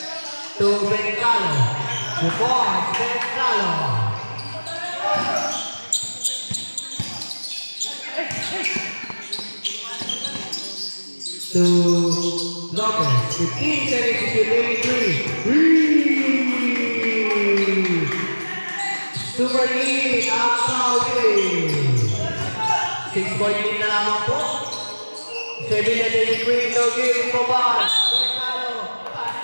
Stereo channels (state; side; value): inverted; both; correlation -1.00